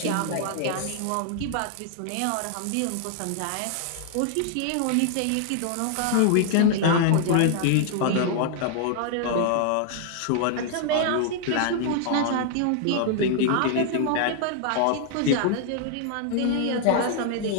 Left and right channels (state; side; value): different; both; correlation 0.00